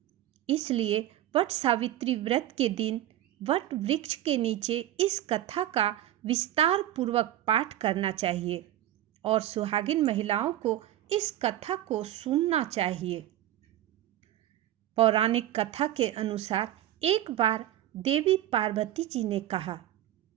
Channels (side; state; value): left; quieter; 13.2 dB